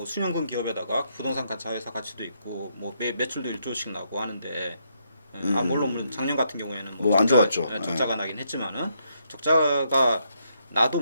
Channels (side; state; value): both; inverted; correlation -0.76